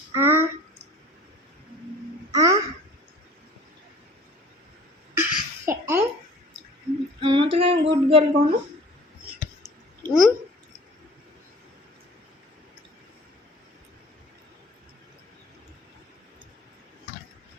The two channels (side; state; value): both; normal; correlation 0.46